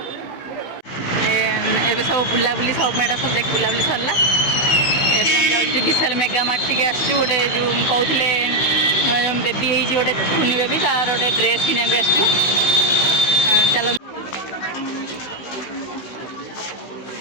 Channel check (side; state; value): right; late; 15 ms